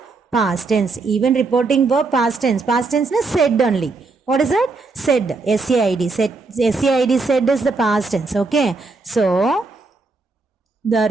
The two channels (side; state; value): left; quieter; 3.9 dB